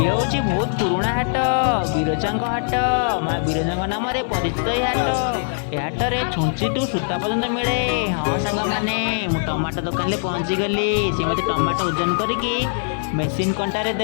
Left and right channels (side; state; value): right; silent; digital silence